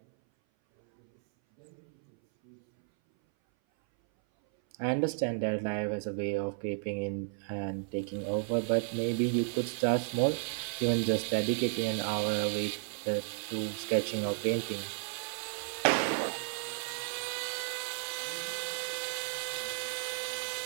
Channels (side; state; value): left; silent; 56 dB below the other